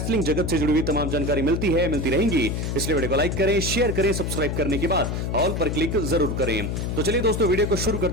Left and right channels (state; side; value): noise; left; hum, 2 dB below the sound